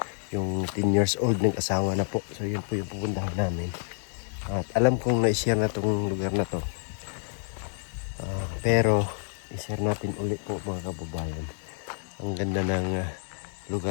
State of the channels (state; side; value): silent; right; digital silence